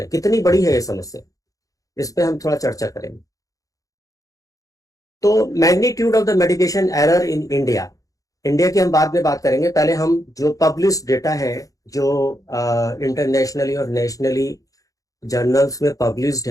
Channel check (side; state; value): right; late; 0.17 ms